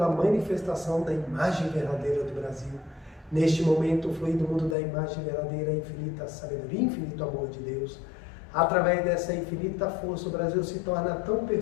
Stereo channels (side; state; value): right; drops out; at 4.8 s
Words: manifestação da imagem verdadeira do Brasil. Neste momento, flui do mundo da imagem verdadeira, a infinita sabedoria, infinito amor de Deus. Através dessa infinita força, o Brasil se torna tão